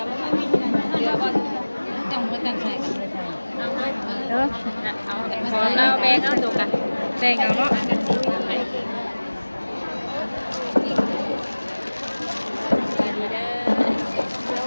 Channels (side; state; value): both; inverted; correlation -1.00